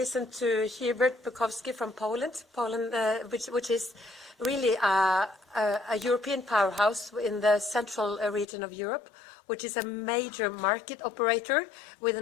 to Hubert Bukowski from Poland, which is really a European powerhouse in the central region of Europe, which is a major market operator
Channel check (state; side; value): drops out; right; at 8.5 s